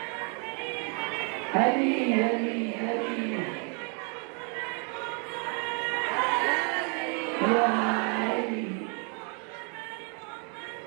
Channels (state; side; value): quieter; left; 38.4 dB